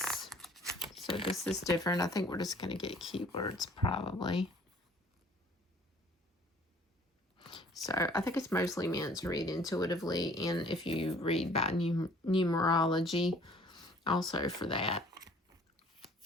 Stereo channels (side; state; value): both; normal; correlation 0.54